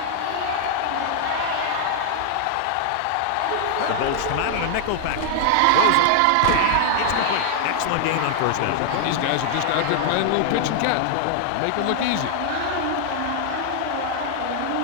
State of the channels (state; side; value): different; both; correlation 0.00